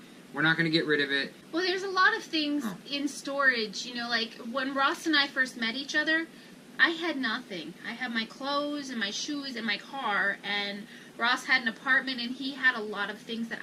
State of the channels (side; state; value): both; identical; correlation 1.00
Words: we're not going to get rid of it. Well, there's a lot of things in storage. You know, like when Ross and I first met each other, I had nothing. I had my clothes and my shoes and my car, and Ross had an apartment, and he had a lot of things that